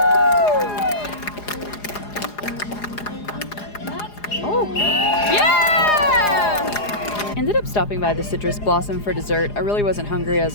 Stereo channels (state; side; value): late; right; 4.9 ms